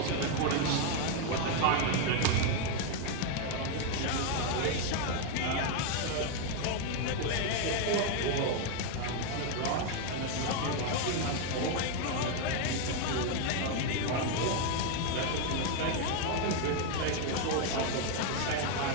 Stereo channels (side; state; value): both; different; correlation 0.01